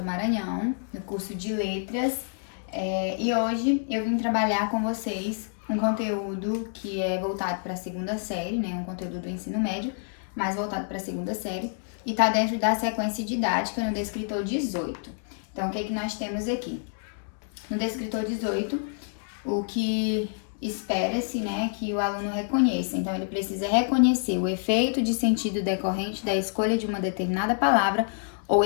Maranhão, no curso de Letras, e hoje eu vim trabalhar com vocês um conteúdo que é voltado para a segunda série, né, um conteúdo do ensino médio, mas voltado para a segunda série, e está dentro da sequência didática no Descritor 18. Então, o que nós temos aqui? No Descritor 18, o que espera-se, né, que o aluno reconheça. Então, ele precisa reconhecer o efeito de sentido decorrente da escolha de uma determinada palavra ou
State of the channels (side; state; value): right; silent; digital silence